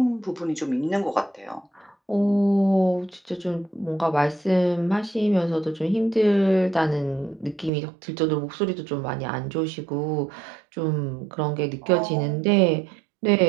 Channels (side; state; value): left; drops out; at 7.7 s